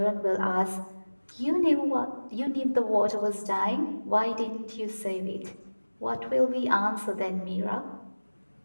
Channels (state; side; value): inverted; both; correlation -1.00